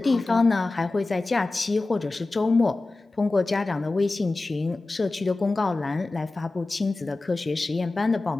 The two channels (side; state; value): right; quieter; 3.2 dB